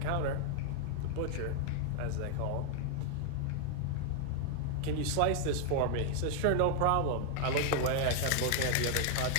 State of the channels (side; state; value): both; different; correlation 0.00